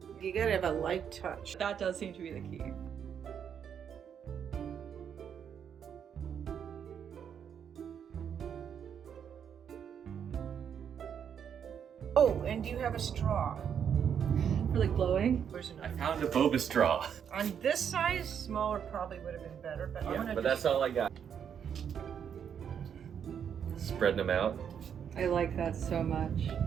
You gotta have a light touch. That does seem to be the key. Oh, and do you have a straw? For like blowing? Where's I another? found a boba straw. On this size, smaller probably would have been better, but I'm gonna but that's all I got. Spreading them out. I like that so much.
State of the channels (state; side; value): quieter; left; 8.0 dB